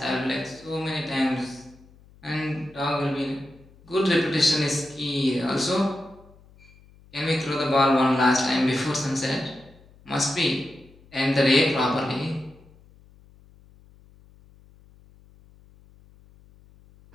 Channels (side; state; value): left; noise; hum, 26 dB below the sound